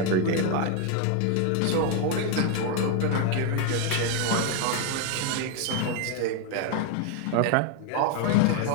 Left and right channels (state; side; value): different; both; correlation 0.01